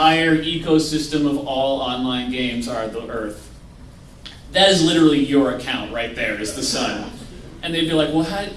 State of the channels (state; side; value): identical; both; correlation 1.00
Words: ecosystem of all online games are the Earth. That is literally your account right there, is the sun. And they'd be like, well,